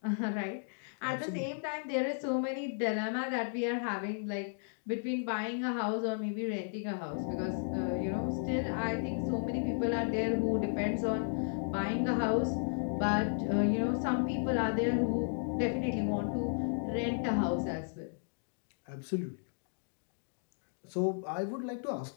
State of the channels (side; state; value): right; silent; digital silence